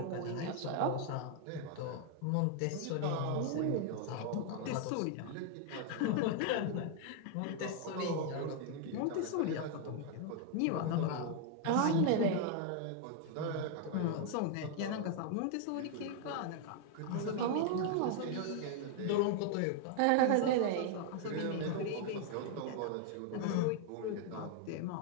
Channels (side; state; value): both; different; correlation 0.00